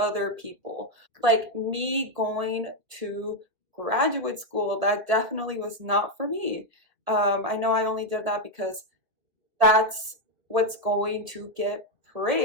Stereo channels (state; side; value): late; left; 1.9 ms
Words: people. Like me going to graduate school, that definitely was not for me. I know I only did that because that's what's going to get